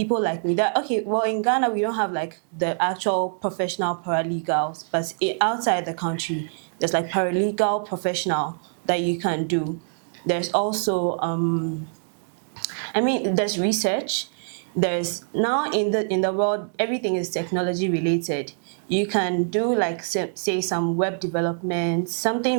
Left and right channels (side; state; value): left; silent; digital silence